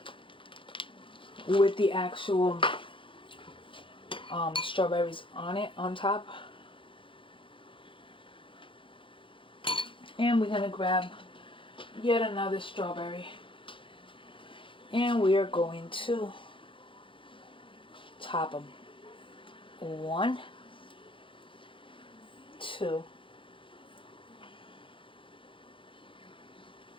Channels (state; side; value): late; right; 0.25 ms